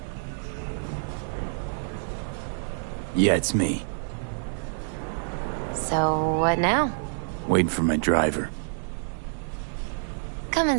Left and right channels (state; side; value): silent; left; digital silence